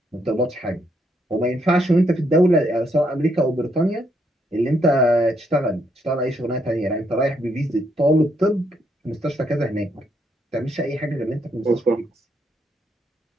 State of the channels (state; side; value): normal; both; correlation 0.75